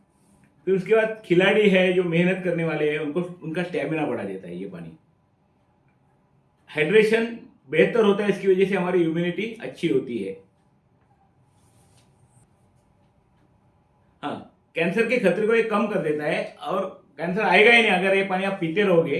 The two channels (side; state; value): both; identical; correlation 1.00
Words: फिर उसके बाद खिलाड़ी है जो मेहनत करने वाले हैं उनको उनका स्टेमिना बढ़ा देता है ये पानी। हाइड्रेशन बेहतर होता है, इसकी वजह से हमारी इम्यूनिटी अच्छी होती है। हाँ, कैंसर के खतरे को ये कम कर देता है, और कैंसर आएगा ही नहीं अगर ये पानी आप पीते रहोगे।